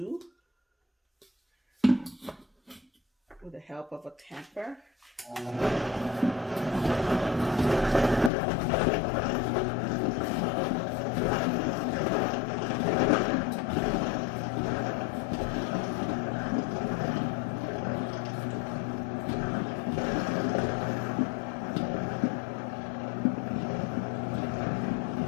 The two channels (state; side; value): drops out; right; at 8.3 s